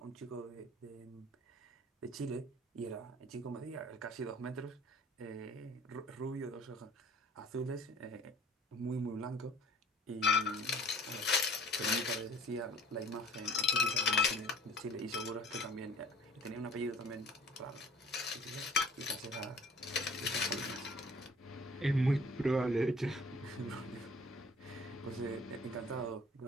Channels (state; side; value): normal; both; correlation 0.50